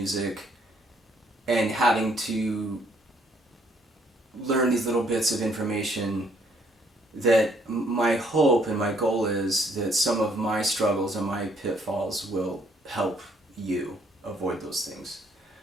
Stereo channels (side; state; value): both; normal; correlation 0.66